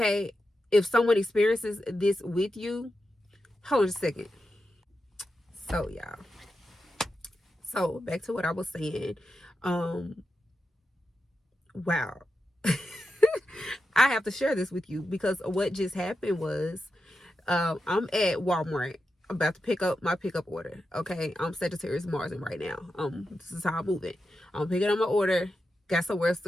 if someone experiences this with you, hold on a second. So y'all, so back to what I was saying. Wow. I have to share this with you, because what just happened was, I'm at Walmart about to pick up my pickup order. Okay, I'm Sagittarius Mars right now. This is how I'm moving. I'm picking up my order, got somewhere else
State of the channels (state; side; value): normal; both; correlation 0.89